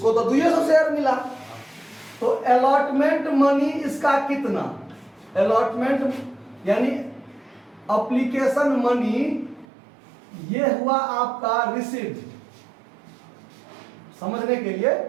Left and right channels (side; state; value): left; drops out; at 9.7 s